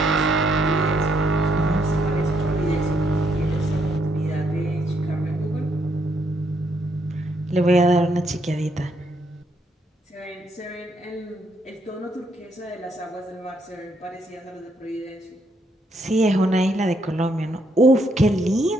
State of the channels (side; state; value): both; normal; correlation 0.74